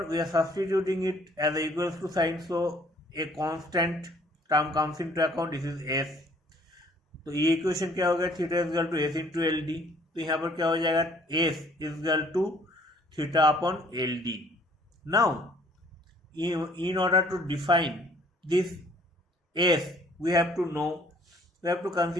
we are substituting it as a equals to sign, so a constant term comes into account. This is S. तो ये equation क्या हो गया, theta is equal to S into L D. तो यहाँ पर क्या हो जाएगा, S is equal to theta upon L D. Now in order to define this S, we have to know, we have to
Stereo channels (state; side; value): normal; both; correlation 0.59